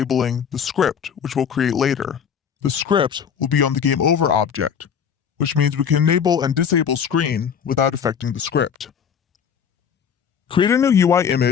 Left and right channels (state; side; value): quieter; right; 7.5 dB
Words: the script, which we'll create later. The script will be on the game over object, which means we can enable and disable screen without affecting the script. Create a new UI